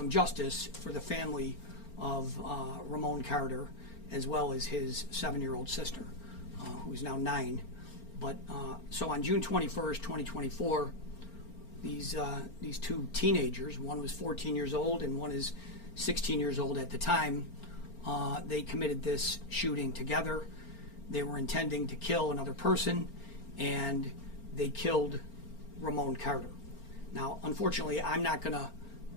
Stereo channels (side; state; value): right; late; 4.4 ms